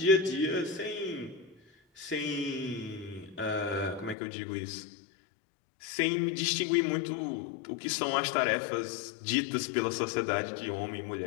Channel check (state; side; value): drops out; right; at 4.2 s